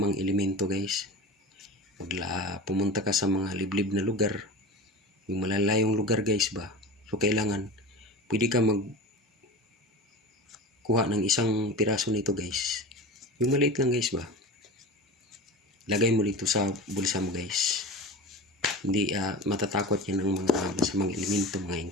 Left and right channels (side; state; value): both; normal; correlation 0.31